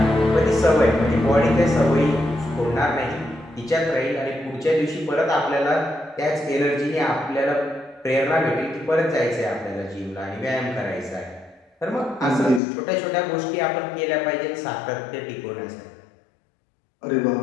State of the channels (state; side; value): drops out; right; at 12.6 s